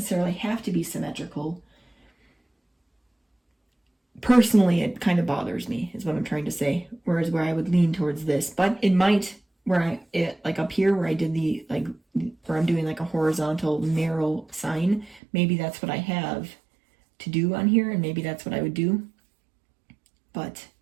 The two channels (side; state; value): left; drops out; at 15.2 s